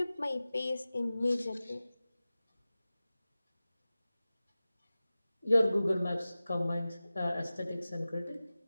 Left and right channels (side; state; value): both; inverted; correlation -0.96